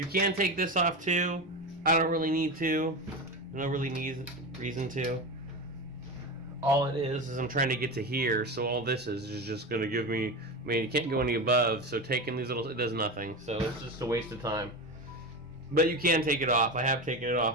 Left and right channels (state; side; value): noise; right; rumble, 24 dB below the sound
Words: can take this off too. I don't really need to. No really reason to. All it is I'm trying to get to here, so all this is just going to give me, I mean, you can't go any above, so taking these little, it does nothing. So it's just a waste of time. But you can take it off. I have taken it